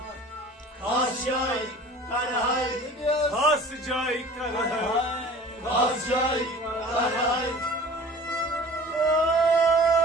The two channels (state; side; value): normal; both; correlation 0.44